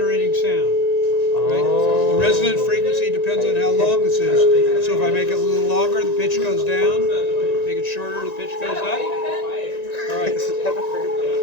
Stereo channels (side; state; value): right; late; 1.9 ms